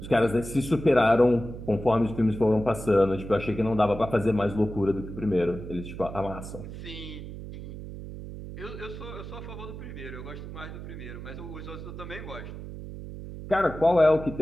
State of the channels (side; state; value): right; noise; hum, 10 dB below the sound